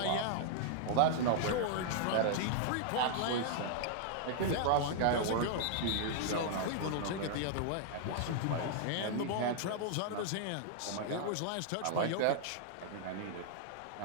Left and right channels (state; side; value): different; both; correlation -0.01